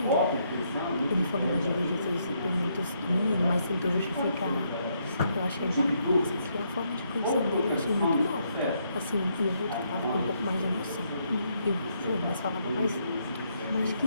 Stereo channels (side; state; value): both; inverted; correlation -0.75